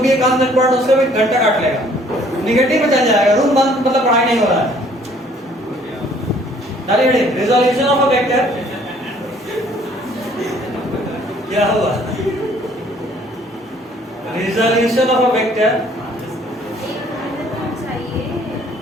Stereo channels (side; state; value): both; normal; correlation 0.59